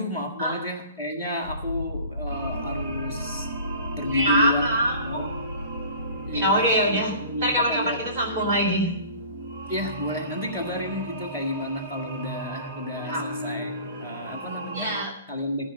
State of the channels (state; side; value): inverted; both; correlation -0.44